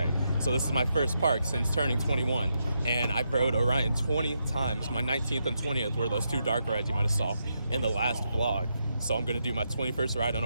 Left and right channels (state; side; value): inverted; both; correlation -0.82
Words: So this is my first park since turning 21, and I rode Orion 20 times. My 19th and 20th were those two dark rides you might have saw in the last vlog. So I'm gonna do my 21st ride on